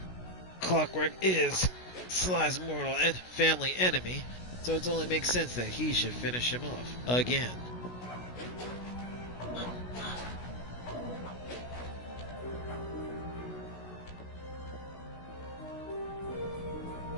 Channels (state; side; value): late; right; 16 ms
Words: Clockwork is Sly's mortal and family enemy. So it only makes sense that he should finish him off. Again.